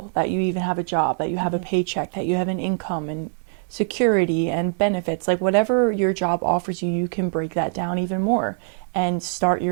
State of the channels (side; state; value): left; silent; 63 dB below the other